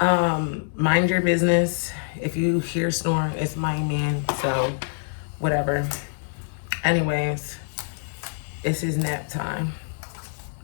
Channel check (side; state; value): right; silent; 62 dB below the other